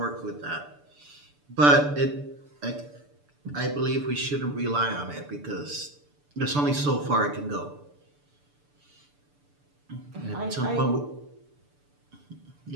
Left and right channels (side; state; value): left; late; 6.9 ms